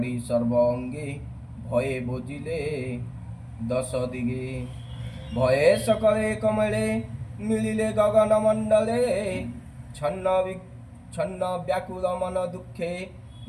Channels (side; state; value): both; identical; correlation 1.00